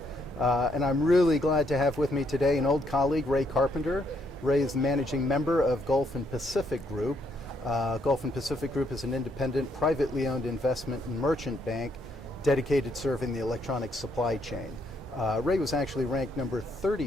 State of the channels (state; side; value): normal; both; correlation 0.73